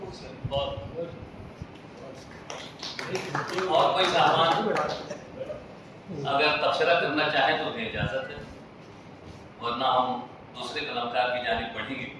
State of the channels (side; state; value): both; identical; correlation 1.00